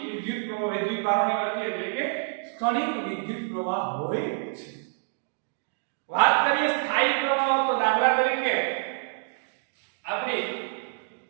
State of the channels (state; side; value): silent; left; digital silence